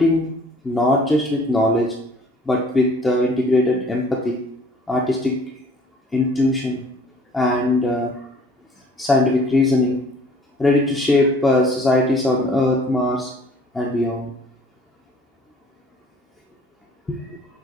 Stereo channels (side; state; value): both; normal; correlation 0.54